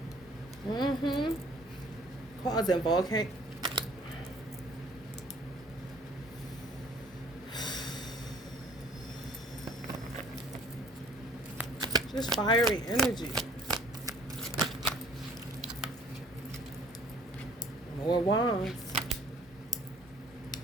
Causing volcano. Just fiery energy. More wands.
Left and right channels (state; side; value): normal; both; correlation 0.55